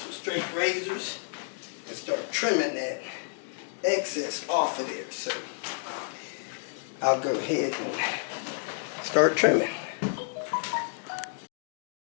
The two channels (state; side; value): silent; right; digital silence